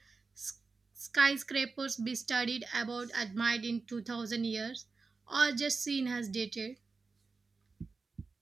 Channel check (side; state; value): left; quieter; 4.3 dB